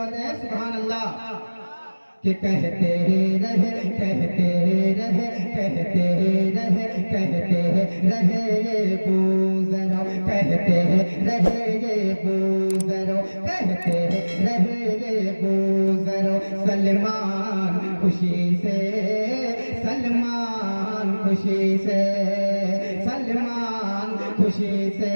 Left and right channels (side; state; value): both; inverted; correlation -1.00